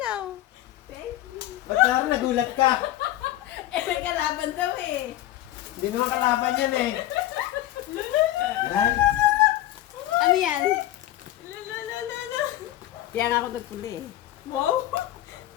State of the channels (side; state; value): right; quieter; 14.4 dB